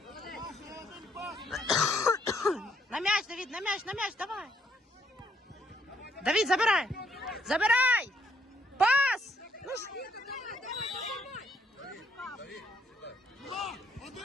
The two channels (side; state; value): both; normal; correlation 0.70